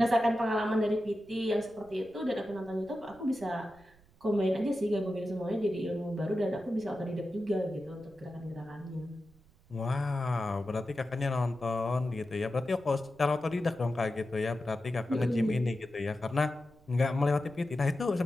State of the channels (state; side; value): noise; right; rumble, 28 dB below the sound